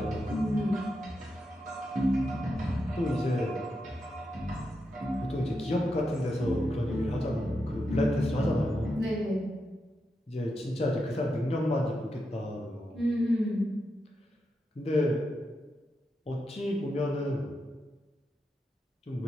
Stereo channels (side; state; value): both; normal; correlation 0.86